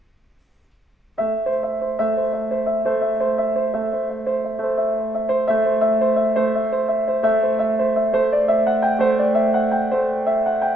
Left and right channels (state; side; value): normal; both; correlation 0.76